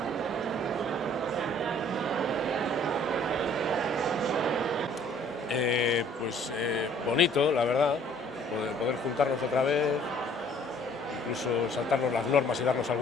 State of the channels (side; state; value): both; normal; correlation 0.57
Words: Bonito, la verdad, poder juntarnos otra vez, incluso saltarnos las normas y darnos